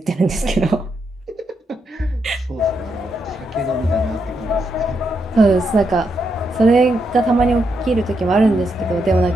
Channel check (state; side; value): normal; both; correlation 0.81